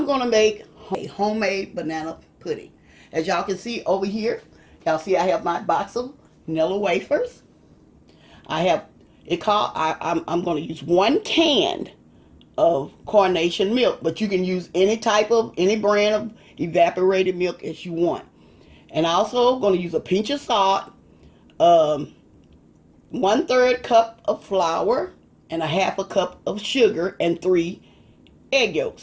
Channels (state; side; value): identical; both; correlation 1.00